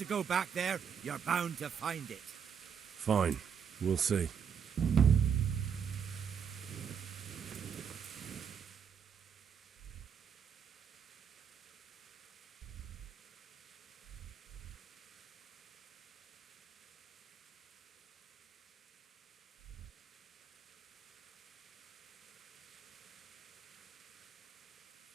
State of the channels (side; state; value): left; quieter; 7.5 dB